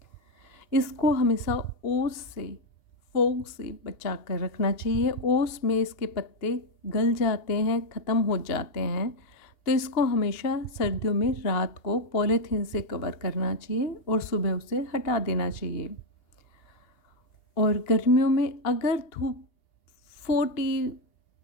इसको हमेशा ओस से, फोग से बचा कर रखना चाहिए। ओस में इसके पत्ते गल जाते हैं, ख़त्म हो जाते हैं, तो इसको हमेशा सर्दियों में रात को पॉलीथीन से कवर करना चाहिए और सुबह उसे हटा देना चाहिए। और गर्मियों में अगर धूप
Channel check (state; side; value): late; right; 2.8 ms